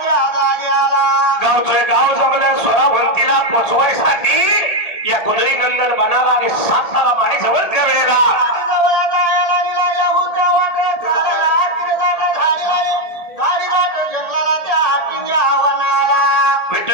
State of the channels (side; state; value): right; late; 1.8 ms